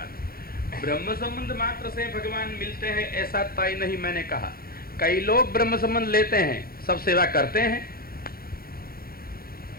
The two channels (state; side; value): late; right; 0.43 ms